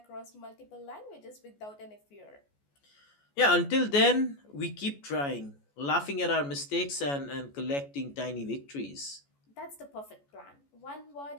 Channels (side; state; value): right; late; 14 ms